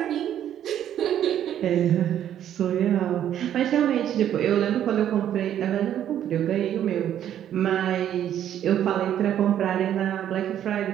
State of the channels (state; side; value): quieter; left; 10.6 dB